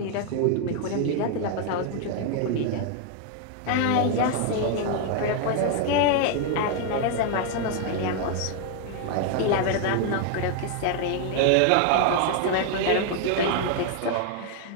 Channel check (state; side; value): different; both; correlation 0.00